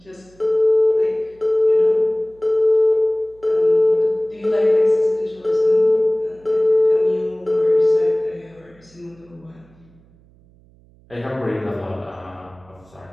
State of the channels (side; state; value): right; noise; hum, 29 dB below the sound